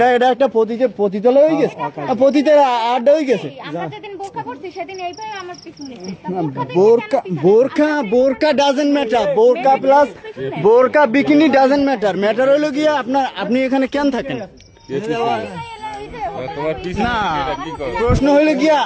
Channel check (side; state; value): both; identical; correlation 1.00